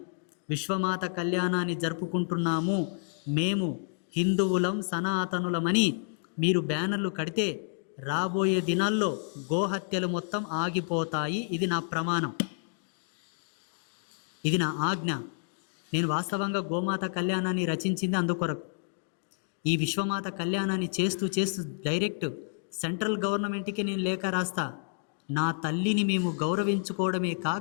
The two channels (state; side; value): silent; right; digital silence